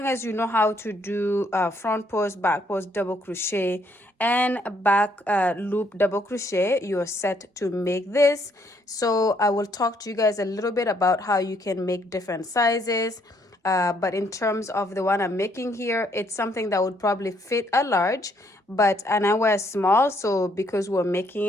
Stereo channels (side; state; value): both; normal; correlation 0.69